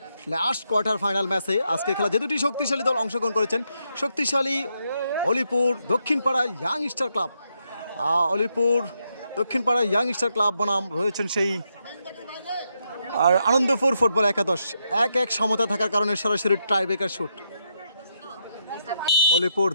লাস্ট কোয়ার্টার ফাইনাল ম্যাচে আজকে খেলা যে দুটি শক্তিশালী দল অংশগ্রহণ করেছেন। শক্তিশালী Alipur Dakshinpara youngster club, Alipur Dakshinpara youngster club বনাম রয়েছেন সেই আর আনন্দপুর ফুটবল একাদশ। 1-1 সমতা থাকার কারণে সরাসরি টাইব্রেকার শুট। অলিপুর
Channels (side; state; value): both; inverted; correlation -0.80